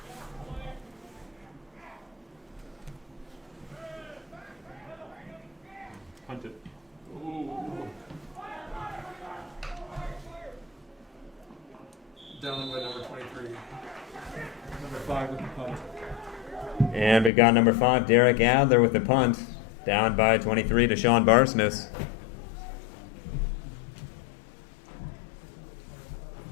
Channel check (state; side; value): drops out; right; at 17.3 s